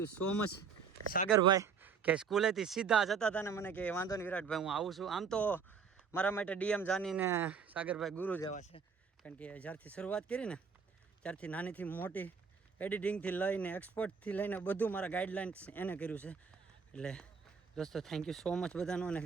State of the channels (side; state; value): left; quieter; 6.0 dB